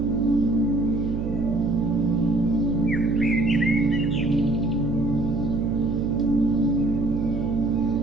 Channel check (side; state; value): right; noise; hum, 5 dB below the sound